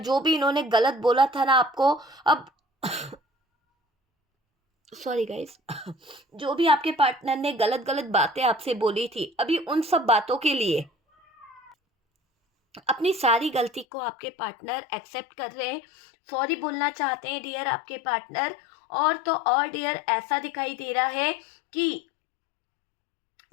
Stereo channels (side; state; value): right; drops out; at 13.9 s